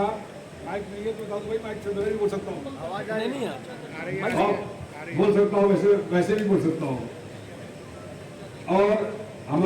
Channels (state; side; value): identical; both; correlation 1.00